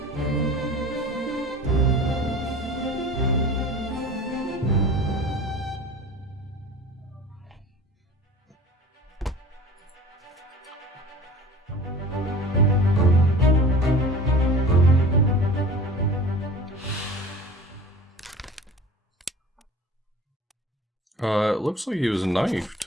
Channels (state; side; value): normal; both; correlation 0.40